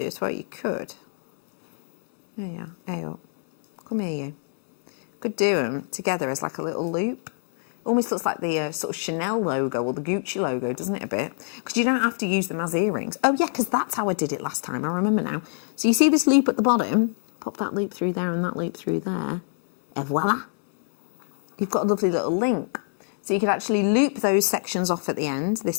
as well. You could. There you are. Hey up. Come here, you. Could do them together as like a little loop. Almost looks like the sort of Chanel logo or the Gucci logo, doesn't it, a bit? Because you don't have to use them as earrings. Oh, yeah, because that's how I did it last time. I remember now. So you see this loop at the bottom? Pop that loop through there and that loop through there. And voila. You've got a lovely little link. So you could actually loop those sections off at the end,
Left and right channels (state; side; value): silent; right; 62 dB below the other